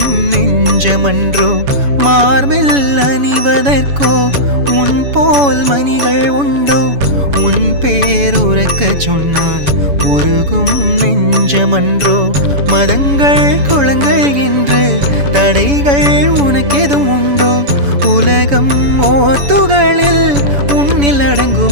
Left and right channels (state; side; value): late; left; 7.0 ms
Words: நெஞ்சமன்றோ மார்பில் அணிவதற்கோ உன் போல் மணிகள் உண்டோ உன் பேருறக்கச் சொன்னால் உருகும் நெஞ்சமன்றோ மதங்கள் குளங்கள் என்று தடைகள் உனக்கெதும் உண்டோ உலகம் ஓர் துகளில் உன்னில்